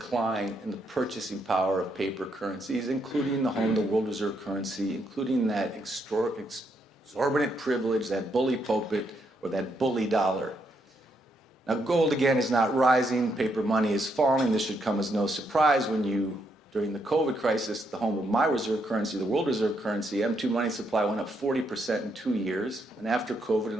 in the purchasing power of paper currencies, including the home of the world reserve currency, including that exorbitant privilege, that bully pulpit, or that bully dollar. Now, gold, again, is not rising. Paper money is falling. This should come as no surprise when you, during the COVID crisis, the home of my reserve currency, the world reserve currency, M2 money supply went up 40% in 2 years, and after COVID,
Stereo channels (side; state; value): both; normal; correlation 0.77